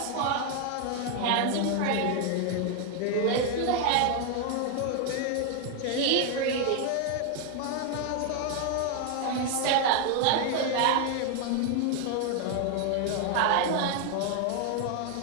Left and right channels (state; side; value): different; both; correlation 0.01